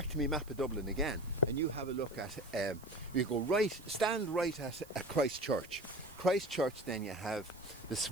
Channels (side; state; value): right; noise; hiss, 22 dB below the sound